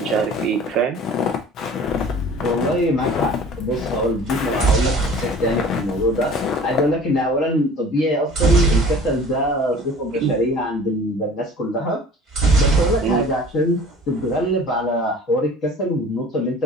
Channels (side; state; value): both; normal; correlation 0.45